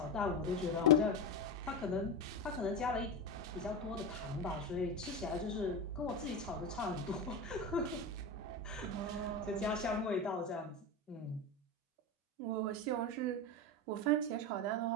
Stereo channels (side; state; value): both; normal; correlation 0.17